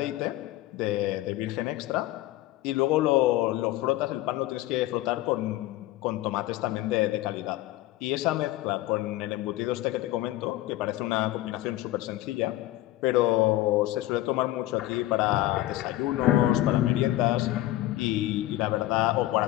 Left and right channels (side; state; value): right; quieter; 16.1 dB